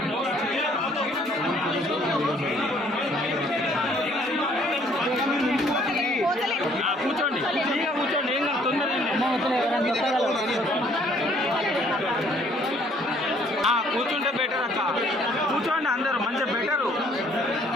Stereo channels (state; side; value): normal; both; correlation 0.61